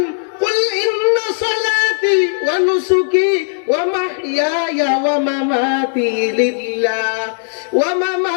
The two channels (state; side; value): silent; right; digital silence